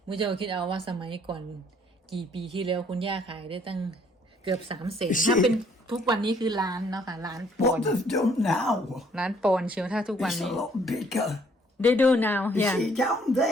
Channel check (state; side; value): normal; both; correlation 0.63